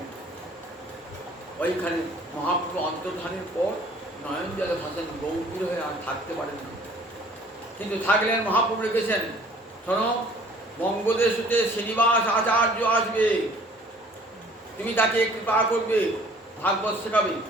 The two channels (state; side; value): normal; both; correlation 0.54